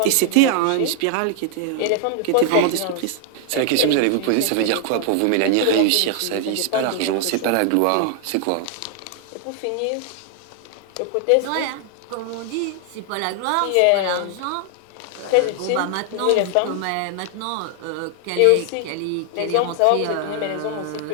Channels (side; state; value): both; different; correlation 0.00